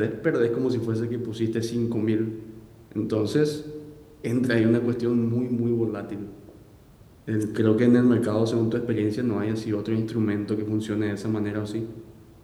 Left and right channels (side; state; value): both; identical; correlation 1.00